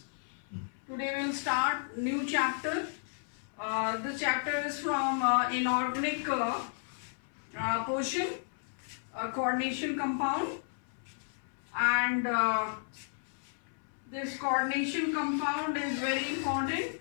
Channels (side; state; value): right; silent; 56 dB below the other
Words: Today we will start new chapter. This chapter is from inorganic portion, coordination compound, and this coordination compound is very important